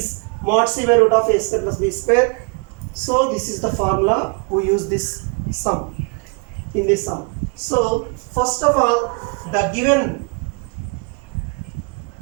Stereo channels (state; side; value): quieter; left; 33.8 dB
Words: mod c by root of a square plus b square. So this is the formula we use this sum in this sum. So first of all, the given